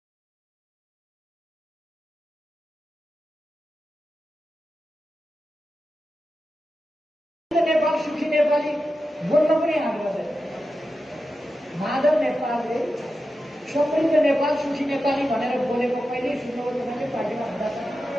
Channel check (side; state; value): both; normal; correlation 0.91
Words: नेपाल सुखी नेपाली बोल्न पनि आउँदैन। माधव नेपालले समृद्ध नेपाल सुखी नेपाली भनेर बोलेको कहिल्यै सुन्नुभयो तपाईँले? पार्टीमा हुँदा